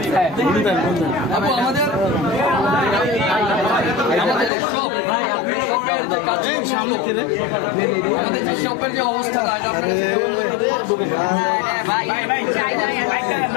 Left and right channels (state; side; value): drops out; right; at 4.5 s